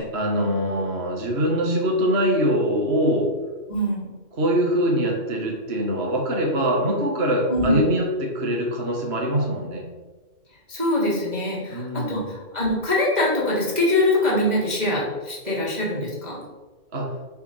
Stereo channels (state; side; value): late; left; 2.1 ms